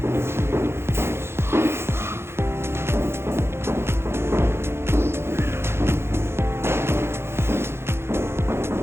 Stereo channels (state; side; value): late; left; 0.12 ms